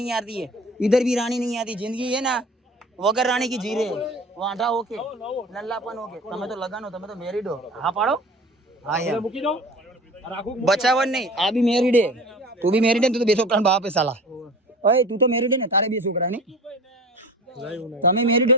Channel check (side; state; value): both; normal; correlation 0.38